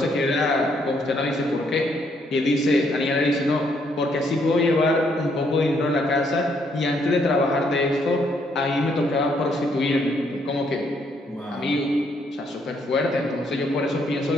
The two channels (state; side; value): normal; both; correlation 0.71